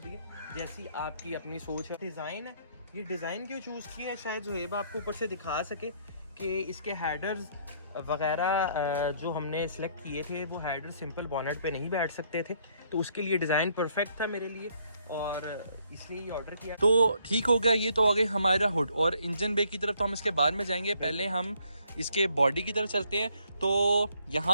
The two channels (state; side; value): inverted; both; correlation -0.67